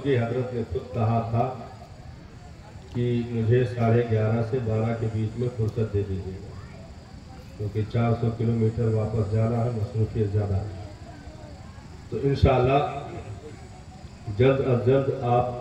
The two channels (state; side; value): identical; both; correlation 1.00